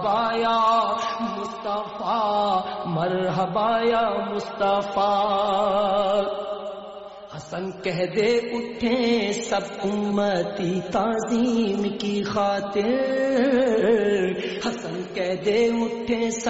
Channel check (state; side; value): identical; both; correlation 1.00